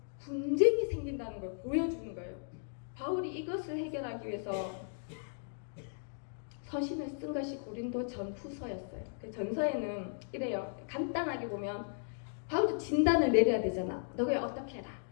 분쟁이 생긴다는 걸 보여주는 거예요. 바울이 이것을 해결하기 위해서 서신을 쓴 것이 고린도 전후서였어요. 그 전서에는 이래요. 간단하게 보면 바울도 진단을 내려야 되잖아. 너가 어떻게 해라.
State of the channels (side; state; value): right; silent; digital silence